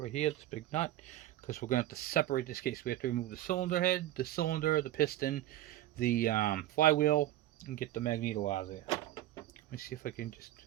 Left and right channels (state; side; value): quieter; left; 14.3 dB